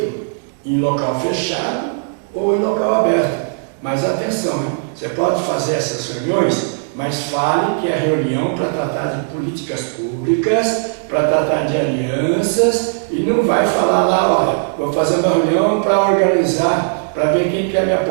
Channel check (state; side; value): silent; left; 67 dB below the other